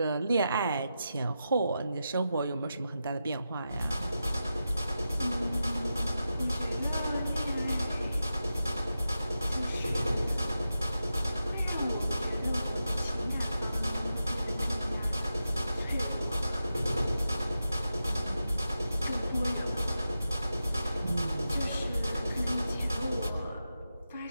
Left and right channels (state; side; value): inverted; both; correlation -0.90